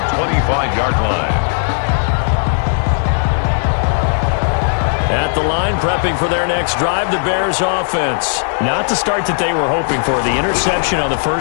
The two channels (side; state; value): right; silent; 68 dB below the other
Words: 25-yard line. At the line, prepping for their next drive, the Bears offense. Not the start that they were hoping for. The interception on the